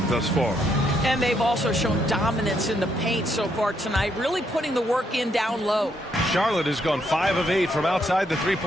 thus far. And they've also shown dominance in the paint so far tonight, really putting the work in down low. Charlotte has gone 5 of 8 from outside the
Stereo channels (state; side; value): normal; both; correlation 0.75